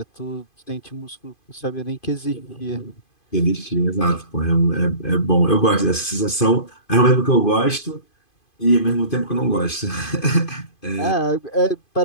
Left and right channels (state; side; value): late; right; 2.5 ms